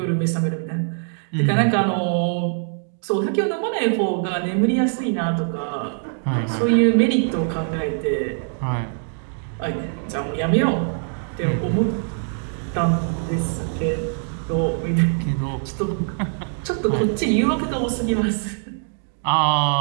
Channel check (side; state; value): left; silent; 59 dB below the other